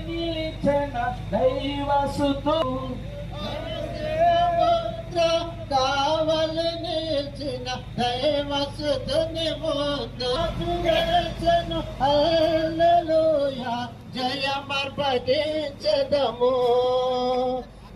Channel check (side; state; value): both; identical; correlation 1.00